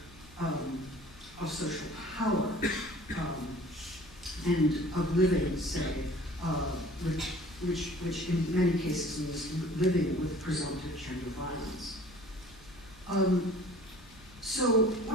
social power and of living, say, which in many cases means living with presumptive gender violence. So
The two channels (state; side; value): normal; both; correlation 0.49